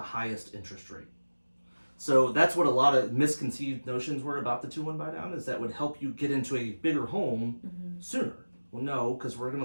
highest interest rate. So that's what a lot of misconceived notions were about the 2-1 buy down, is that would help you get into a bigger home sooner. Well, no, because we're going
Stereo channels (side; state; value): both; inverted; correlation -1.00